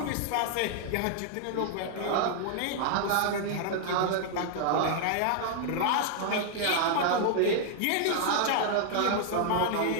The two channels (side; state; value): both; different; correlation 0.00